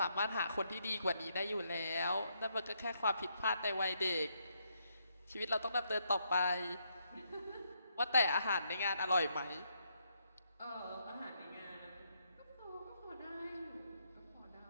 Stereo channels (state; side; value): inverted; both; correlation -0.76